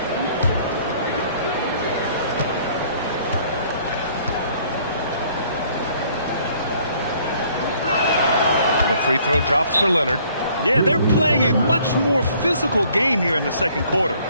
The free throw drops for Leonard. Yeah, they're playing a much more physical game here in the second quarter.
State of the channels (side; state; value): both; inverted; correlation -0.60